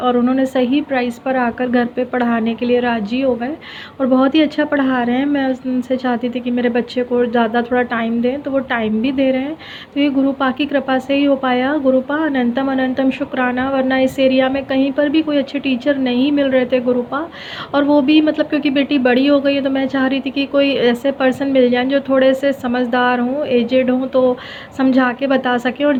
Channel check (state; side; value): identical; both; correlation 1.00